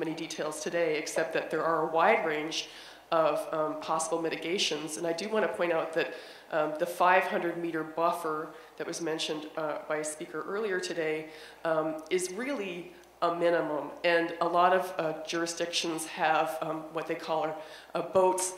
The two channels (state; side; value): identical; both; correlation 1.00